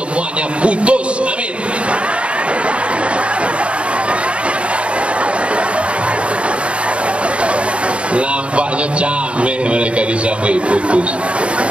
putus. Amin. Nampaknya cameh mereka disampai putus.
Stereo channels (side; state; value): left; late; 0.060 ms